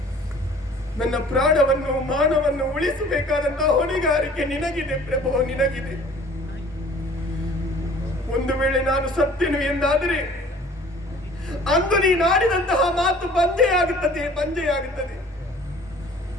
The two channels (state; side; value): normal; both; correlation 0.50